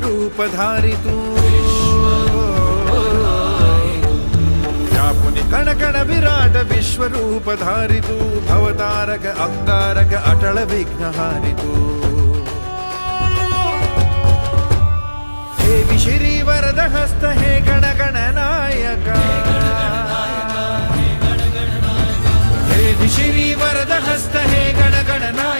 धारितू, व्यापुनि कण कण विराट विश्वरूप धारितू, भवतारक अंगारक अटल विघ्नहारितू। हे विशिरी वरद हस्त हे गण गण नायका, हे विशिरी वरद हस्त हे गण गण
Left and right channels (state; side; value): inverted; both; correlation -1.00